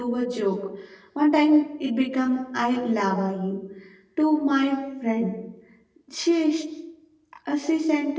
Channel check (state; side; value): identical; both; correlation 1.00